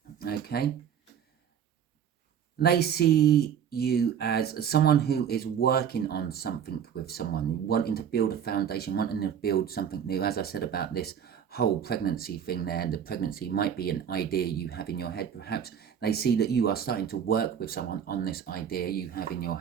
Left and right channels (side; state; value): left; quieter; 8.5 dB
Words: Okay, they see you as someone who is working on something with someone, wanting to build a foundation, wanting to build something new. As I said about this whole pregnancy thing there, the pregnancy might be an idea you have in your head. Perhaps they see that you are starting to work with someone on this idea you have in your